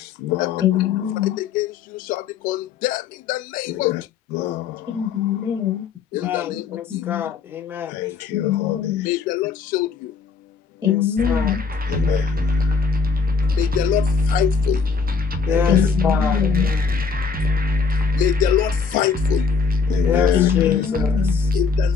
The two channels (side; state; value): right; quieter; 5.6 dB